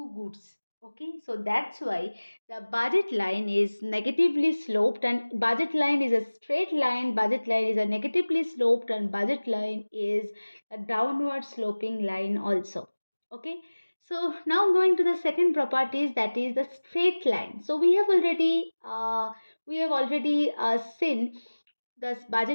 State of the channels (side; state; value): both; inverted; correlation -1.00